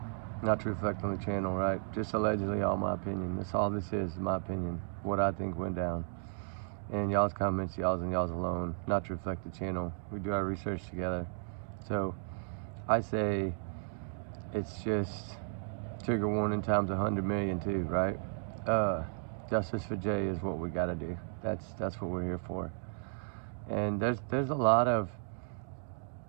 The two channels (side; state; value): left; silent; digital silence